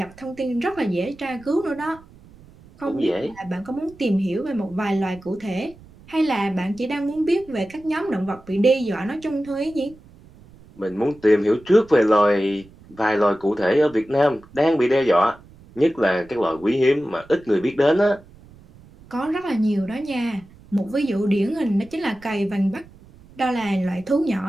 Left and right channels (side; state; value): right; noise; rumble, 23 dB below the sound